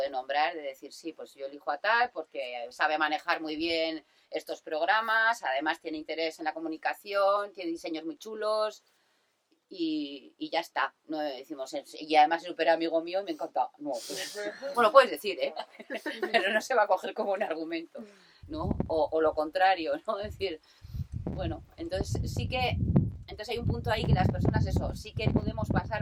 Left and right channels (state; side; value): identical; both; correlation 1.00